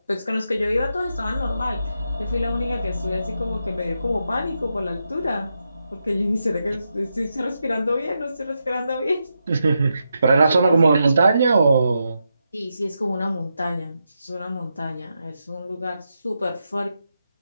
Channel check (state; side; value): inverted; both; correlation -0.86